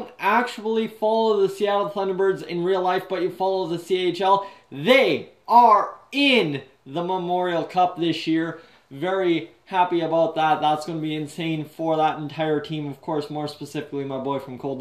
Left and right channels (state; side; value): identical; both; correlation 1.00